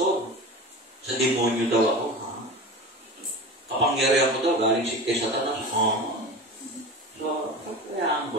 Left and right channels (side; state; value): both; normal; correlation 0.32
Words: sa demonyo daw ako. Kapangyarihan ko daw, galing si kay Satanas. So, kayaan